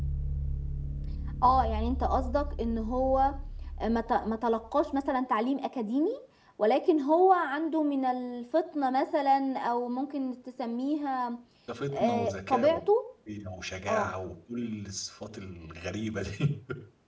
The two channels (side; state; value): both; identical; correlation 1.00